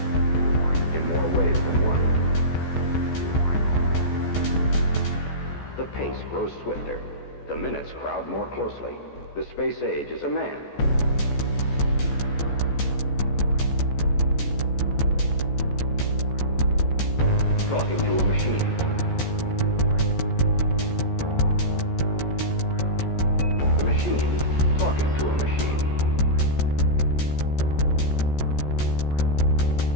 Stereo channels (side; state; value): right; late; 14 ms